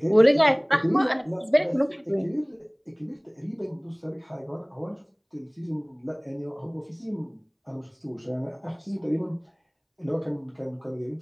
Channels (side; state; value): both; identical; correlation 1.00